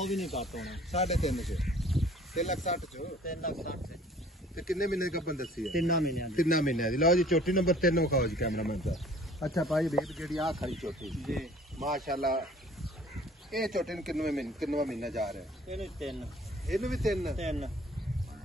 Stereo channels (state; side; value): normal; both; correlation 0.52